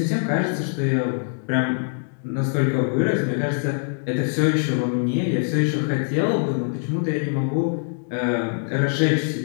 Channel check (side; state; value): right; silent; digital silence